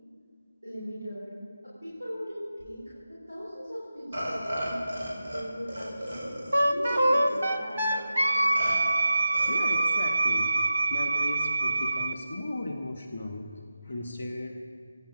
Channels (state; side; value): inverted; both; correlation -0.90